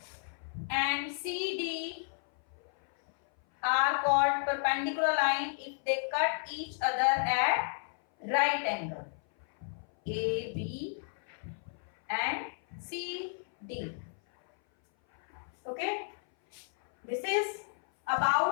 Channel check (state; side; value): silent; right; 56 dB below the other